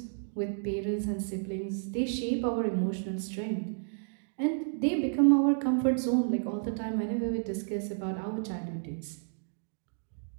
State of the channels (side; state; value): left; silent; digital silence